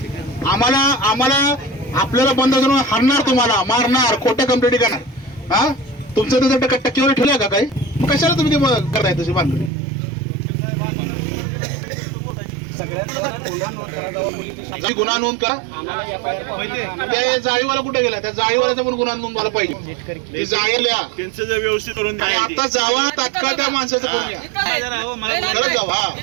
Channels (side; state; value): left; drops out; at 9.7 s